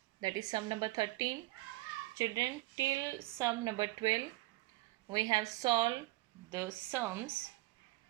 that is sum number 13. Children, till sum number 12 we have solved the sums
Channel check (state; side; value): quieter; left; 19.8 dB